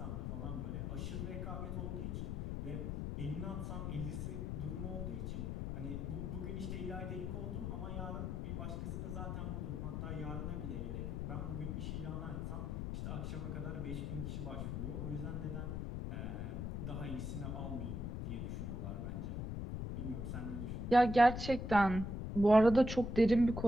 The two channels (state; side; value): noise; left; rumble, 3 dB below the sound